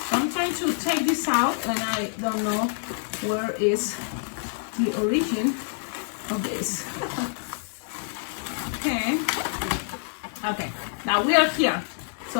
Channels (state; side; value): silent; right; digital silence